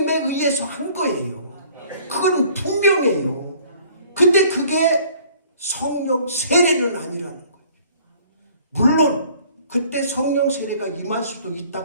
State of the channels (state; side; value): inverted; both; correlation -0.54